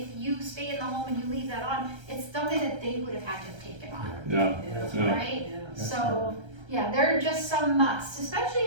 you stay in the home and you leave that on, it's something that they would have had to have taken on, Yeah, yeah. right? So, yeah, there are just some musts,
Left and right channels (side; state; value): left; late; 1.3 ms